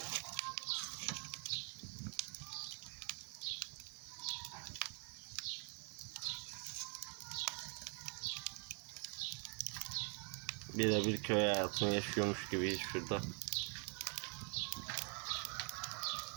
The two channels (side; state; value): left; quieter; 37.8 dB